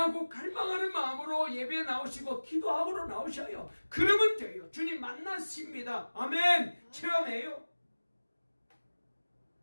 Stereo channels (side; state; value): both; inverted; correlation -1.00